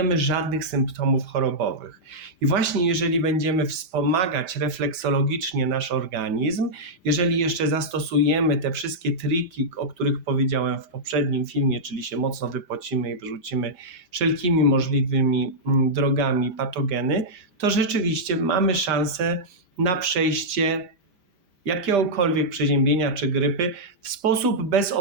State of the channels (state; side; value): late; left; 5.0 ms